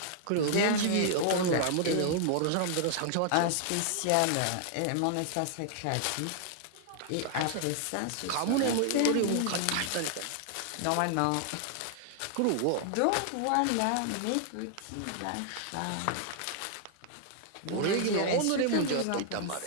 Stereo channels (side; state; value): both; different; correlation 0.00